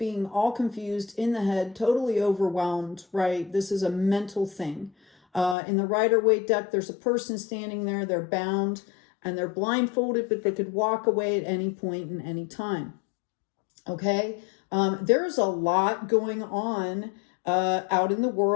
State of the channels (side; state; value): right; drops out; at 5.6 s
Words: all confused in the head, totally overwhelmed, right? This is a mental thing. In the Rider-Waite deck, there's a person standing there, they're bound and they're blindfolded, but they could walk away at any point in any time. Okay, there's a lot going on out in the